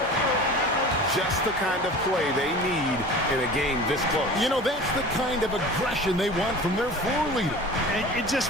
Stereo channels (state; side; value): normal; both; correlation 0.38